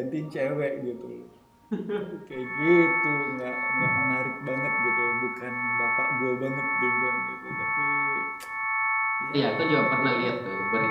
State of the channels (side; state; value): both; identical; correlation 1.00